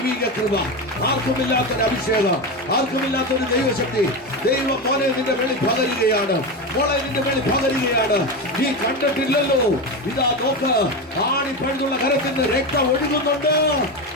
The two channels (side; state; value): both; normal; correlation 0.18